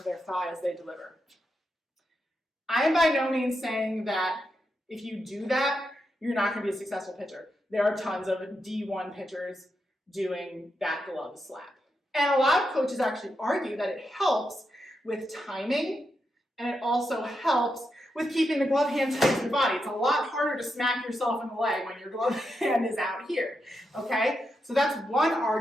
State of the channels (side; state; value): both; normal; correlation 0.85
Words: their thigh as they deliver. I am by no means saying that if you do that, you're not going to be a successful pitcher. There are tons of D1 pitchers doing that glove slap. And a lot of coaches actually argue that it helps with timing, and it also helps with keeping the glove hand tight to the body. It's a lot harder to smack yourself in the leg when your glove hand is out here, okay? So that's one